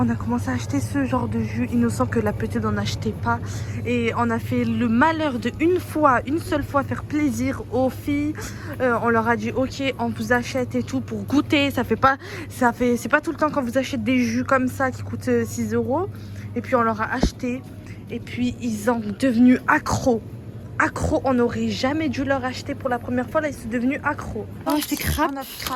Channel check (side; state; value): both; identical; correlation 1.00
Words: a commencé à acheter ce genre de jus innocent que la petite n'en achetait pas. Et on a fait le malheur de une seule fois, faire plaisir aux filles. On leur a dit, ok, on vous achète et tout pour goûter. C'est pas tout le temps qu'on vous achète des jus comme ça qui coûtent 6 €. Et puis on leur a acheté. Et puis ils sont devenus accros. Accros, on n'aurait jamais dû leur acheter pour la première fois. Là, ils sont devenus accros. On a acheté crêpes.